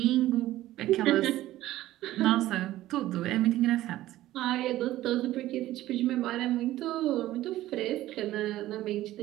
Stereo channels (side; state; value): left; quieter; 15.1 dB